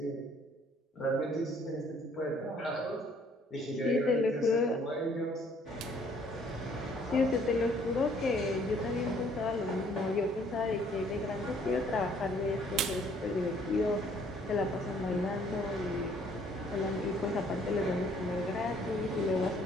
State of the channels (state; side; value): normal; both; correlation 0.61